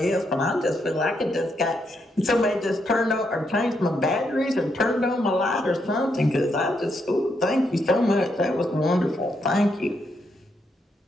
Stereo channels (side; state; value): both; normal; correlation 0.79